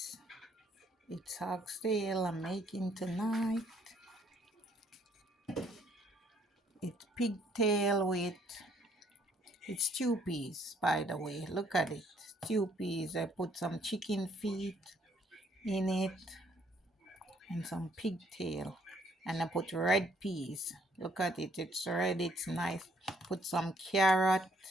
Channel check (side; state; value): both; normal; correlation 0.66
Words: it's oxtail I'm making tonight. It's pigtail with, it's stew peas, by the way. Look at it. Stew peas. I put some chicken feet in it and some pigtail. And I put red peas. Look at it. It's red. It's nice. Put some carrot